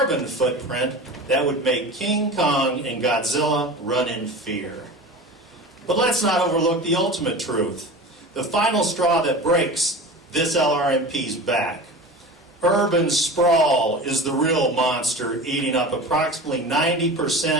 footprint that would make King Kong and Godzilla run in fear. But let's not overlook the ultimate truth, the final straw that breaks this LRMP's back. Urban sprawl is the real monster, eating up approximately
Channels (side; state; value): both; normal; correlation 0.33